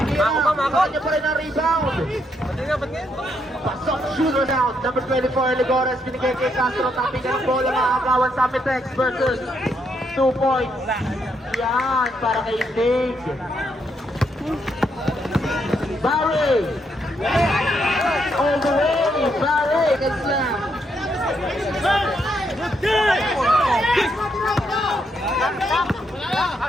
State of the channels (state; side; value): normal; both; correlation 0.77